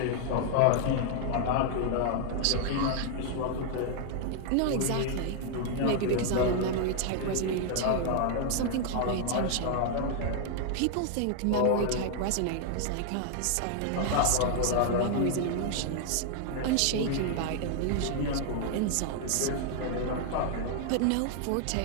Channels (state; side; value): different; both; correlation 0.00